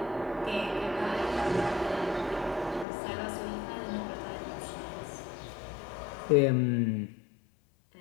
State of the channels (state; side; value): drops out; right; at 2.9 s